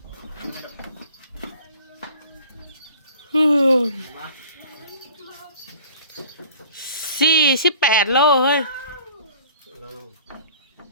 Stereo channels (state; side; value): inverted; both; correlation -0.49